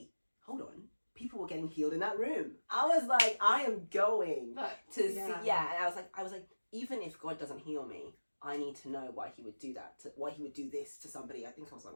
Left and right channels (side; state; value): both; inverted; correlation -1.00